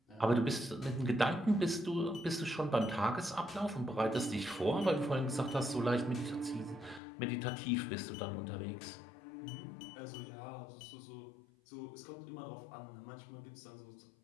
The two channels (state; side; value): drops out; right; at 7.0 s